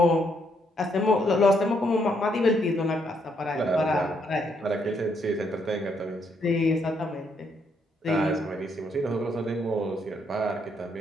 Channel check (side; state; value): both; normal; correlation 0.73